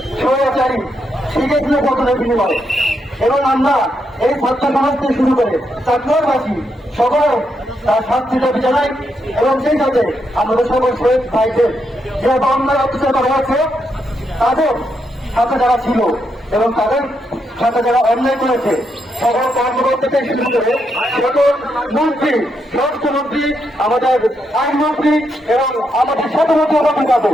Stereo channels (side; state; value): both; normal; correlation 0.80